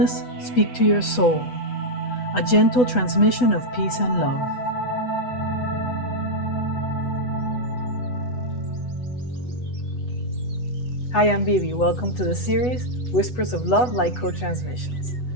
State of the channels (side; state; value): right; late; 8.1 ms